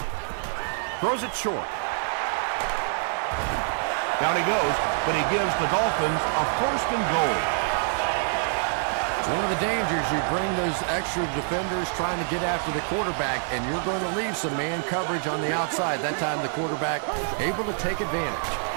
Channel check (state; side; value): silent; left; 58 dB below the other